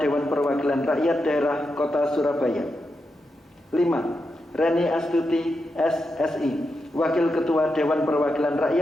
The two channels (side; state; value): both; normal; correlation 0.87